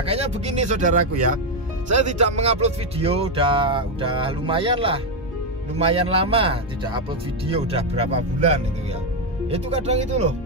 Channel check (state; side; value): normal; both; correlation 0.04